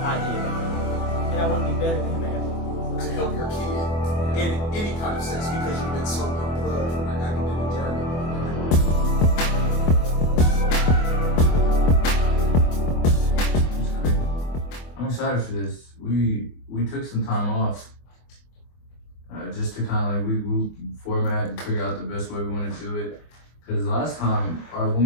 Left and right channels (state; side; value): late; right; 24 ms